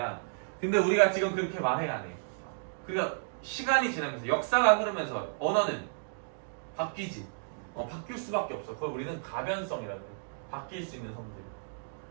근데 우리가 지금 그렇게 말해 안 해. 그러니까 시간이 지나면서 역사가 흐르면서 언어는 바뀌지. 바뀔 수밖에 없어. 그걸 우리는 가변성이라고 해. 바뀔 수 있는 성질.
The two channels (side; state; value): left; silent; digital silence